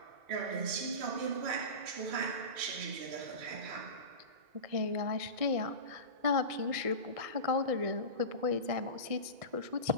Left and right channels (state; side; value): late; left; 1.7 ms